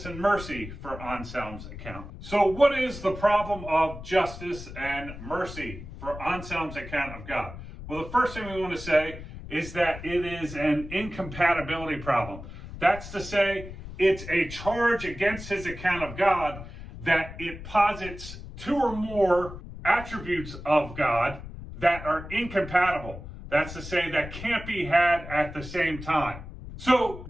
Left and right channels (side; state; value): left; noise; rumble, 12 dB below the sound